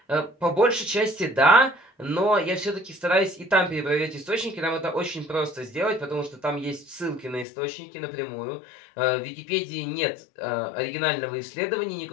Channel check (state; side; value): drops out; right; at 7.5 s